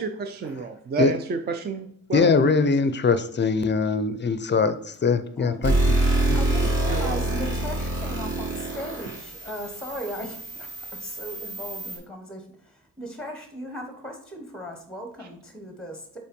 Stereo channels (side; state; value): both; normal; correlation 0.44